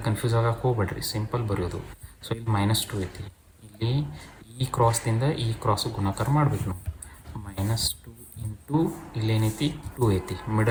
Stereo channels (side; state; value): both; identical; correlation 1.00